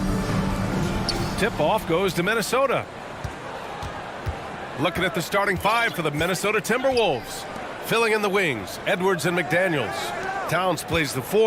Tip-off goes to Minnesota. Looking at the starting five for the Minnesota Timberwolves. Filling in the wings, Edwards and McDaniels. Towns plays the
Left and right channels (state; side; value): identical; both; correlation 1.00